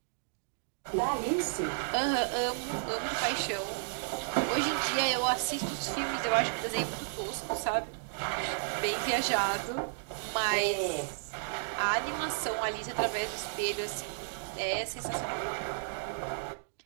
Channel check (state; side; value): silent; left; digital silence